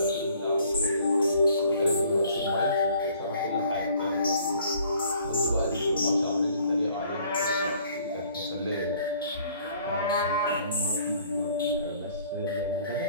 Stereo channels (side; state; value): both; inverted; correlation -0.58